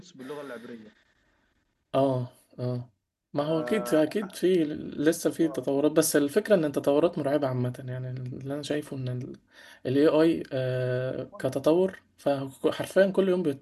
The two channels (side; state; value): both; identical; correlation 1.00